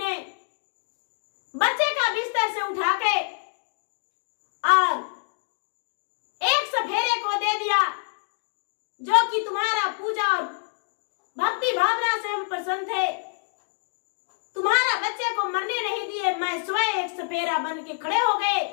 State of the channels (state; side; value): silent; right; digital silence